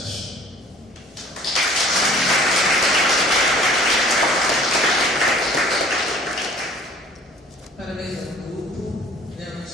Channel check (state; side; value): normal; both; correlation 0.51